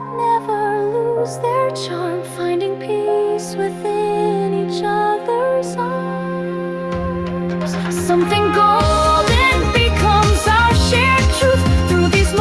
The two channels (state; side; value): identical; both; correlation 1.00